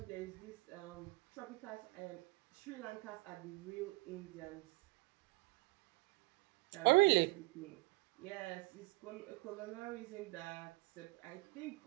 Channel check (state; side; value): quieter; left; 23.8 dB